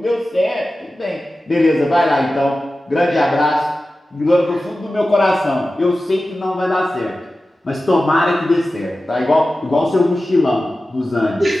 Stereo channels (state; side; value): normal; both; correlation 0.95